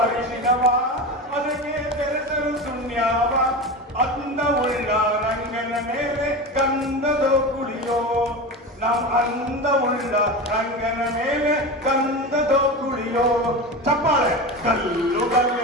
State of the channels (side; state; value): both; normal; correlation 0.25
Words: ಅರಿಶಿನವ ಅದಕ್ಕೆ ಬೆರೆಸಲು ಸುಣ್ಯಾವ ಅಂದವುಳ್ಳ ರಂಗನ ಮೇಲೆ ಗಂಧದೋ ಕುಳಿಯೋ ಅಂದವುಳ್ಳ ರಂಗನ ಮೇಲೆ ಗಂಧದೋ ಕುಳಿಯೋ ಚಪ್ಪಾಳೆ ಕಲ್ಲು